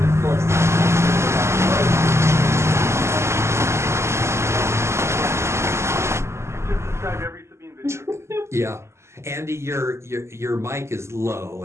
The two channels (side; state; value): left; late; 0.13 ms